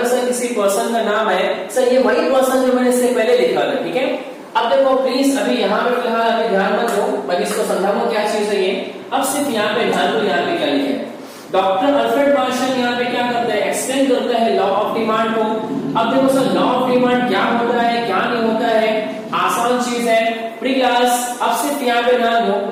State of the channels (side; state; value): both; identical; correlation 1.00